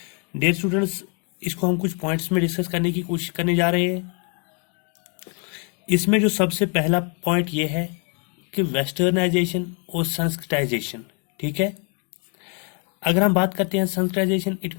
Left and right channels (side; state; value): right; quieter; 37.7 dB